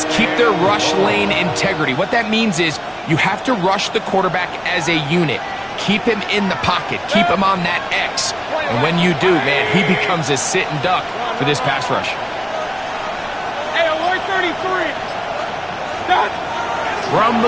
keep their rush lane integrity. What that means is you have to rush the quarterback as a unit. Keep him in the pocket. Keep him on that X. And when you do, man, he becomes a sit and duck for this pass rush. Hey, alert 33. Done. From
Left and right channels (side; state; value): both; identical; correlation 1.00